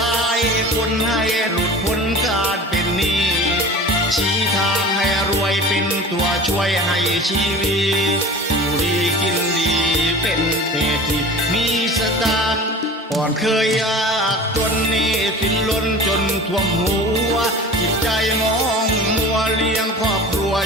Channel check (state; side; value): normal; both; correlation 0.38